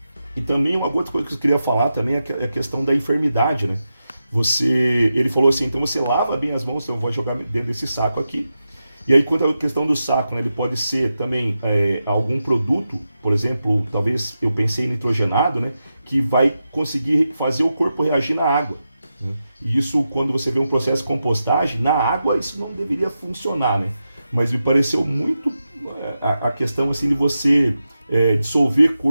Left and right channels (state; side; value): inverted; both; correlation -0.90